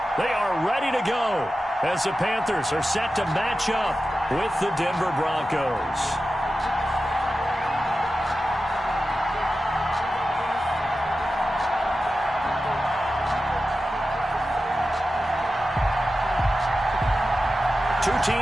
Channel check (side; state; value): both; normal; correlation 0.93